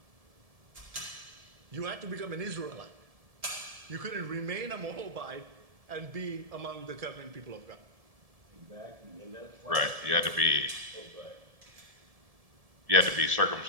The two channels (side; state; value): left; late; 1.7 ms